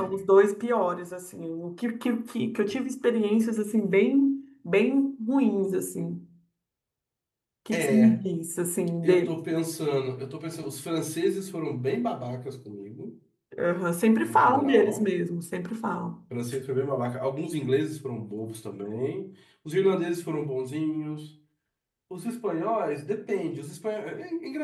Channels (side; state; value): both; identical; correlation 1.00